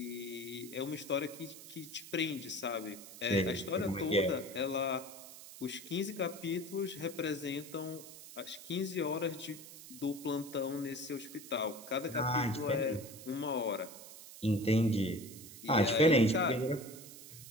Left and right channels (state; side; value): noise; right; hiss, 15 dB below the sound